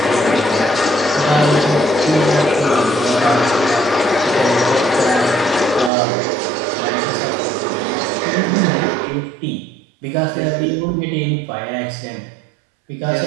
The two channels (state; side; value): drops out; left; at 5.9 s